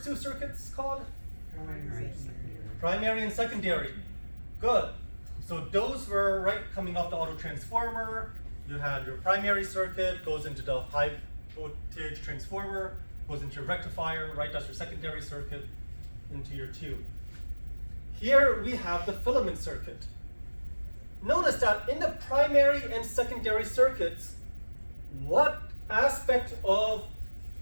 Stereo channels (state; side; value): inverted; both; correlation -1.00